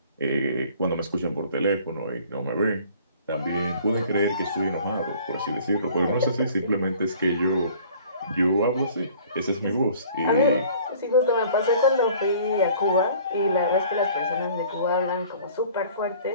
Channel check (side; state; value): both; inverted; correlation -0.51